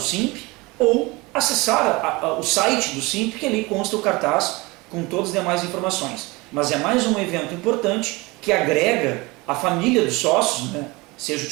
ou acessar o site do SIMP, que ali consta o cartaz com todas as demais informações. Mas é mais um evento importante que agrega a família dos sócios, né, seja o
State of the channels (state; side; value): quieter; left; 23.7 dB